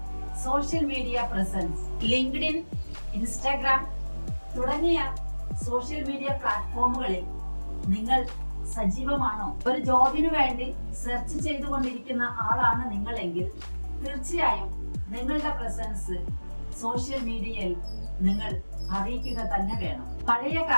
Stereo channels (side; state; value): both; inverted; correlation -1.00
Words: social media presence. LinkedIn, Instagram തുടങ്ങിയ സോഷ്യൽ മീഡിയ പ്ലാറ്റ്ഫോമുകളിൽ നിങ്ങൾ സജീവമാണോ? ഒരു ജോബിനു വേണ്ടി സെർച്ച് ചെയ്തുകൊണ്ടിരിക്കുന്ന ആളാണ് നിങ്ങളെങ്കിൽ തീർച്ചയായും നിങ്ങളുടെ പ്രസൻസ് സോഷ്യൽ മീഡിയയിൽ നിങ്ങൾ അറിയിക്കുക തന്നെ വേണം. പഴയ